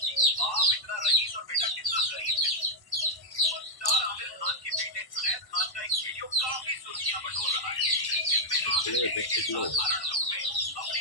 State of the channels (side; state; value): right; late; 1.1 ms